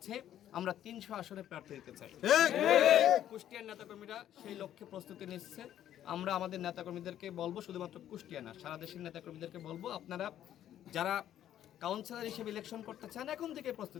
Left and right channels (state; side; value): quieter; right; 11.3 dB